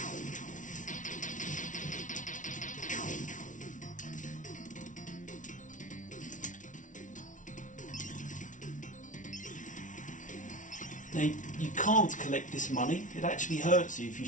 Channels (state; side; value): late; right; 0.37 ms